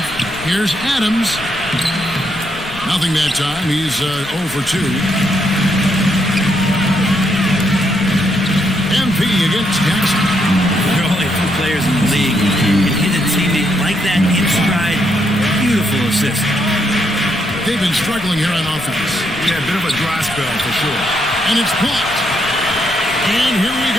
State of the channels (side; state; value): left; noise; rumble, 20 dB below the sound